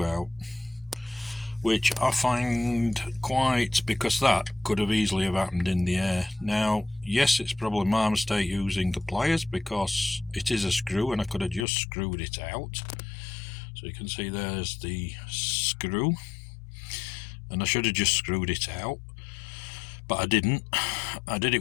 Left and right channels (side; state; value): right; drops out; at 11.7 s